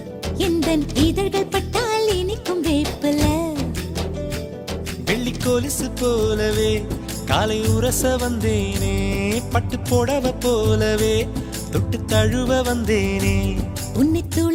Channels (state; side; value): identical; both; correlation 1.00